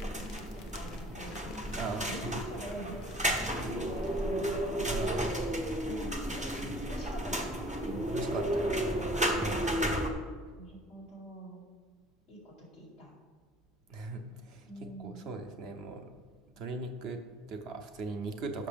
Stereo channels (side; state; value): both; normal; correlation 0.51